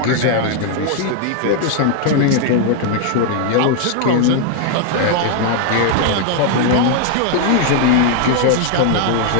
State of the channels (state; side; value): different; both; correlation 0.00